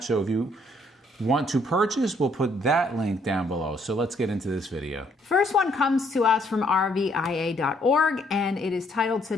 so if you want to purchase, we'll put that link down below. So let's get into this video. First one comes to us from RVIA.org, and it is titled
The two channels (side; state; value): both; normal; correlation 0.68